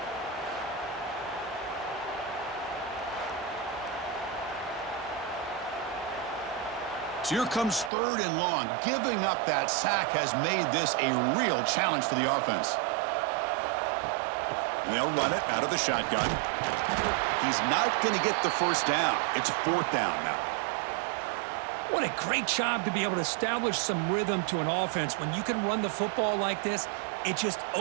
So here comes third and long. Giving up that sack has made this a real challenge for the offense. And they'll run it out of the shotgun. He's not going to get the first down. It's fourth down now. What a great job to be able to establish some rhythm to an offense. When you can run the football like this, it just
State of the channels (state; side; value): drops out; left; at 7.9 s